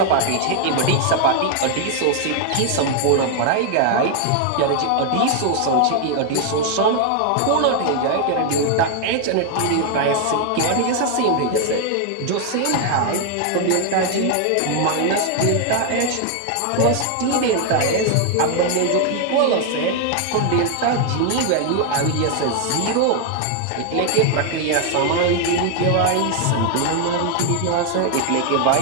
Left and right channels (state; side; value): different; both; correlation 0.00